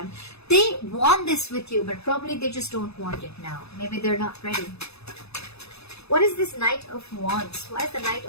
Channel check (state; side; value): late; right; 0.79 ms